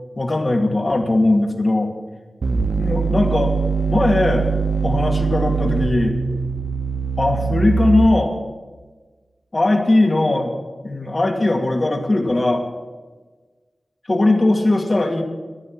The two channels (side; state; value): both; normal; correlation 0.94